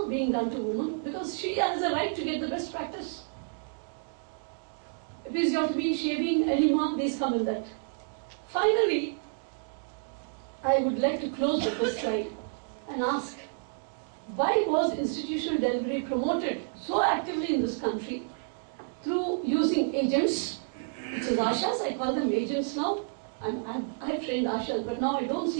being done to women because she has a right to get the best practice. Episiotomy, shaving, enema, these come in that. Finally, I would like to close with this slide and ask, why was institutional delivery promoted so actively in this country through using agents, which is ASHAs, I call them agents now. I've trained ASHAs, but now I don't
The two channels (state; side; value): silent; left; digital silence